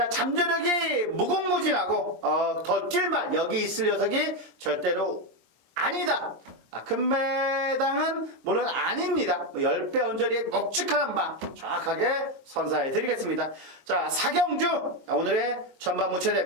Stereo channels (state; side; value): late; left; 25 ms